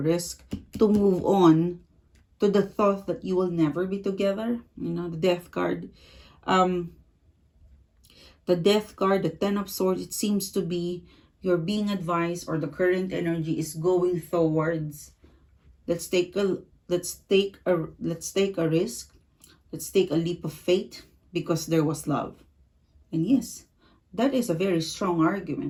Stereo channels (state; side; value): identical; both; correlation 1.00